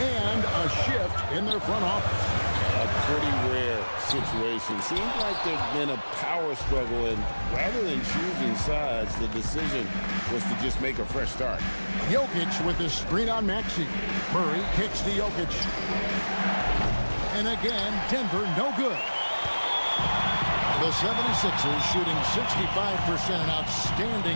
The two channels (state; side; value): inverted; both; correlation -1.00